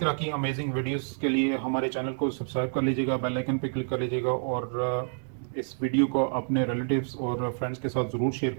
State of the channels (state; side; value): silent; left; 59 dB below the other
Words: की अमेजिंग वीडियोस के लिए हमारे चैनल को सब्सक्राइब कर लीजिएगा, बेल आइकन पे क्लिक कर लीजिएगा, और इस वीडियो को अपने रिलेटिव्स और फ्रेंड्स के साथ ज़रूर शेयर